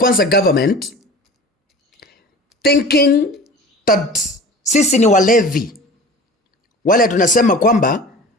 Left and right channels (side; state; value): both; normal; correlation 0.39